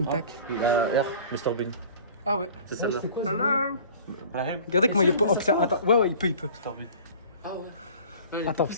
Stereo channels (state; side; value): inverted; both; correlation -0.45